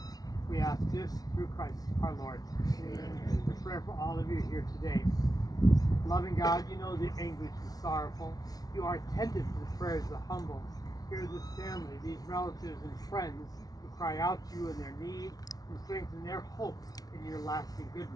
We ask this through Christ our Lord. Amen. A prayer for all of you here today. Loving God, you know the anguish and sorrowful. You are attentive to the prayers of the humble. Hear this family, these relatives and friends who cry out to you in their need and strengthen their hope in your lasting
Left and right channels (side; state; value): right; late; 0.18 ms